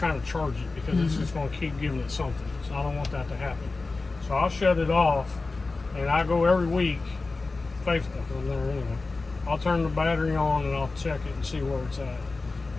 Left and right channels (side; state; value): right; quieter; 3.6 dB